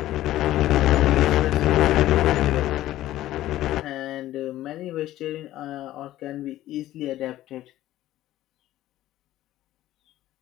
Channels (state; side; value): quieter; right; 14.4 dB